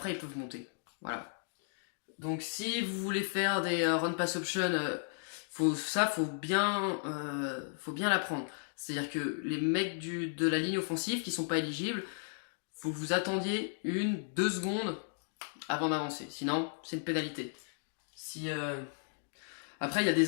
monter. Voilà. Donc si vous voulez faire des run pass option, faut bien l'apprendre. C'est-à-dire que les mecs de la ligne offensive qui sont pas éligibles, faut que vous attendiez 1-2 secondes avant d'avancer. Sinon, c'est une pénalité. Après, il y a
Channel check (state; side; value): silent; right; digital silence